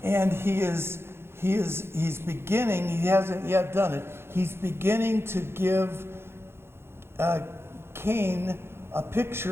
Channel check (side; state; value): left; late; 0.12 ms